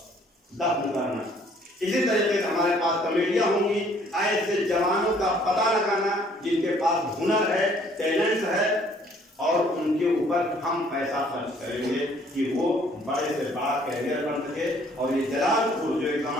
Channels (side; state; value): both; normal; correlation 0.60